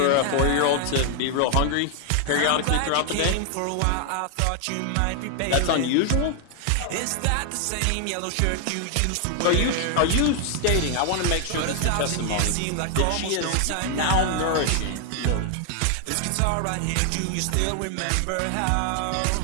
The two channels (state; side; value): different; both; correlation 0.00